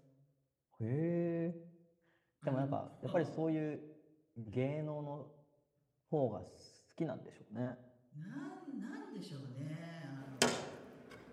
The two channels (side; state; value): both; identical; correlation 1.00